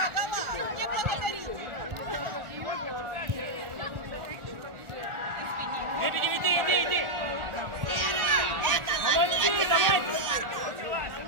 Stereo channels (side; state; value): left; late; 1.4 ms